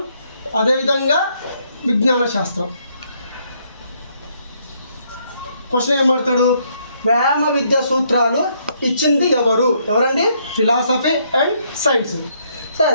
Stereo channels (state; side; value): inverted; both; correlation -0.71